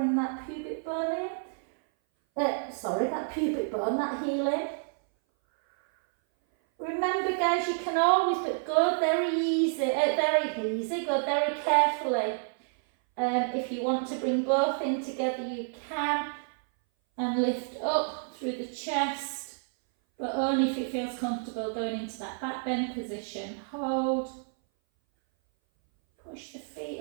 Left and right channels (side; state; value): left; silent; 58 dB below the other